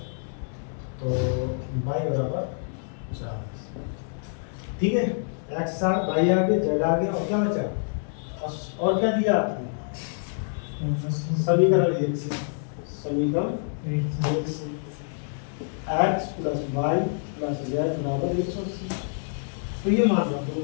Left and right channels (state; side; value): silent; right; digital silence